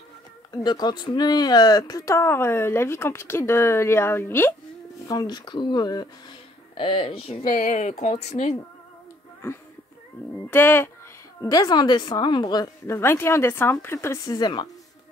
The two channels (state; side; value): normal; both; correlation 0.63